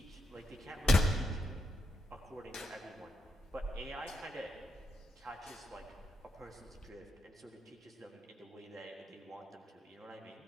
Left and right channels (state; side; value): normal; both; correlation 0.81